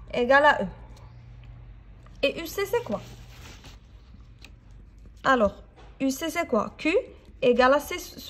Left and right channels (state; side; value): identical; both; correlation 1.00